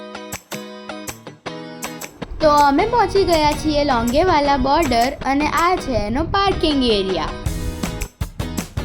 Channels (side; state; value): both; identical; correlation 1.00